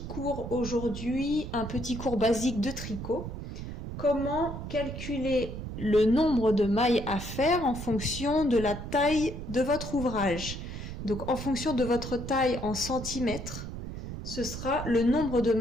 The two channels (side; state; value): right; noise; rumble, 8 dB below the sound